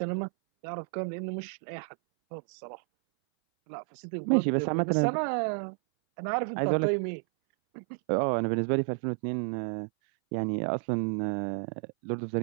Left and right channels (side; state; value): left; silent; 57 dB below the other